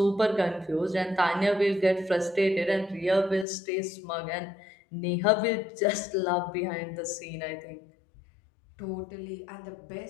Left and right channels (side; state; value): right; drops out; at 3.5 s